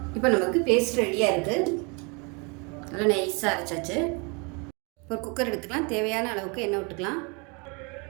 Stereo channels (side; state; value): left; quieter; 31.8 dB